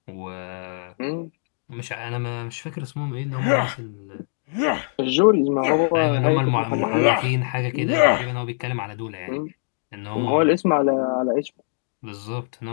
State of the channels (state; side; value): silent; right; digital silence